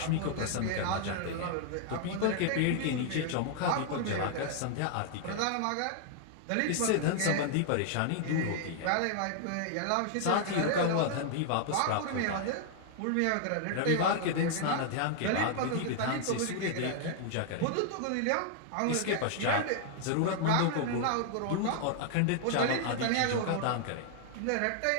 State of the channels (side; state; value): both; different; correlation -0.01